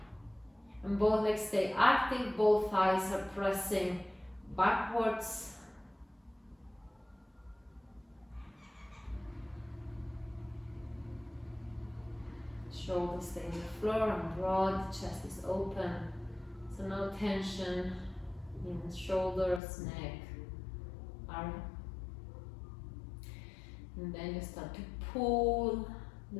And both legs stay active, both thighs are pressing backwards. Shoulders stay on the floor and broad, chest is open. So no tension in the shoulders, neck, arm. And then you start to pull the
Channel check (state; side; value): drops out; right; at 19.6 s